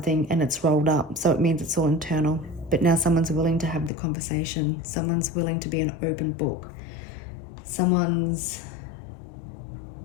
and it's rolled up, so it means it's all internal. But now someone's willing to have the conversation. Someone's willing to be an open book. Someone's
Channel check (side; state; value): right; drops out; at 3.9 s